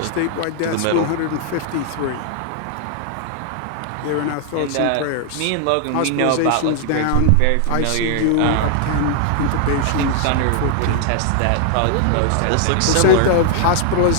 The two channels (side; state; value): both; different; correlation 0.00